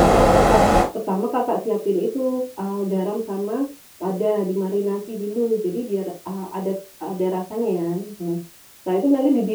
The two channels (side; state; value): both; identical; correlation 1.00